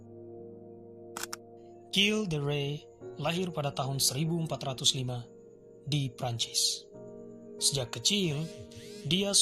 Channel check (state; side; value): identical; both; correlation 1.00